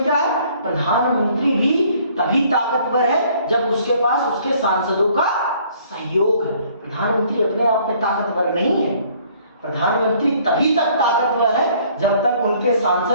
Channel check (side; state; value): both; inverted; correlation -0.59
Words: क्या है? प्रधानमंत्री भी तभी ताकतवर है जब उसके पास उसके सांसदों का सहयोग है। प्रधानमंत्री अपने आप में ताकतवर नहीं है। प्रधानमंत्री तभी तक ताकतवर है जब तक उनके